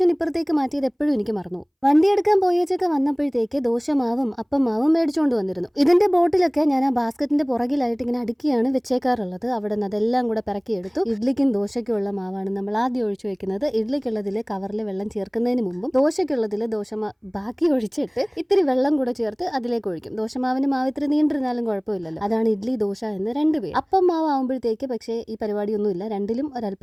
ഇപ്പുറത്തേക്ക് മാറ്റിയത് എപ്പോഴും എനിക്ക് മറന്നു. വണ്ടി എടുക്കാൻ പോയേച്ചൊക്കെ വന്നപ്പോഴത്തേക്ക് ദോശമാവും അപ്പം മാവും മേടിച്ചുകൊണ്ട് വന്നിരുന്നു. ഇതിന്റെ ബോട്ടിലൊക്കെ ഞാൻ ആ ബാസ്ക്കറ്റിന്റെ പുറകിലായിട്ട് ഇങ്ങനെ അടുക്കിയാണ് വെച്ചേക്കാറുള്ളത്. അവിടെ നിന്ന് അതെല്ലാം കൂടെ പിറക്കിയെടുത്തു. ഇഡ്ലിക്കും ദോശയ്ക്കും ഉള്ള മാവാണ് നമ്മൾ ആദ്യം ഒഴിച്ചു വെക്കുന്നത്. ഇഡ്ലിക്കുള്ളതിൽ കവറിൽ വെള്ളം ചേർക്കുന്നതിന് മുമ്പും ദോശയ്ക്കുള്ളതിൽ ബാക്കി ഒഴിച്ചിട്ട് ഇത്തിരി വെള്ളം കൂടെ ചേർത്ത് അതിലേക്ക് ഒഴിക്കും. ദോശമാവിന് മാവ് ഇത്തിരി നീണ്ടിരുന്നാലും കുഴപ്പമില്ലല്ലോ. അതാണ് ഇഡ്ലി ദോശ എന്ന് രണ്ടുപേരും. അപ്പം മാവ് ആവുമ്പോഴത്തേക്ക് പക്ഷേ ഈ പരിപാടിയൊന്നുമില്ല. രണ്ടിലും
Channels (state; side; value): identical; both; correlation 1.00